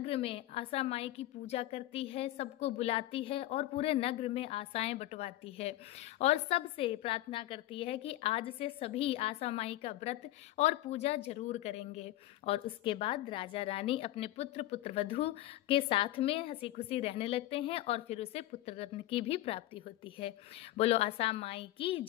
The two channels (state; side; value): quieter; right; 15.4 dB